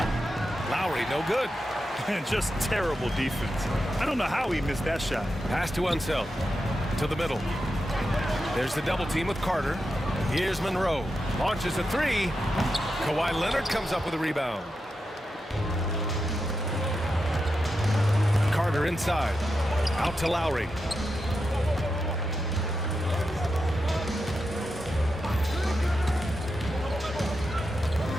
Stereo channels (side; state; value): both; normal; correlation 0.88